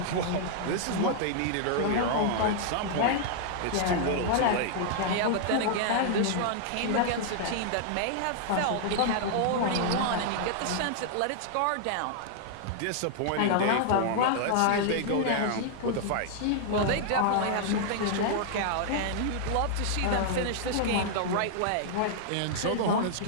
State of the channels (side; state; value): both; different; correlation -0.01